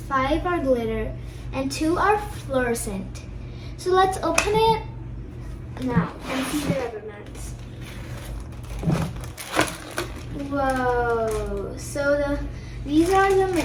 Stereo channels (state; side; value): identical; both; correlation 1.00